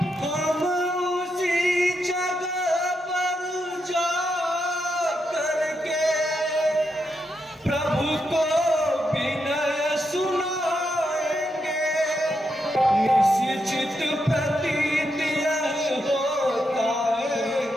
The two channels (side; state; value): both; normal; correlation 0.83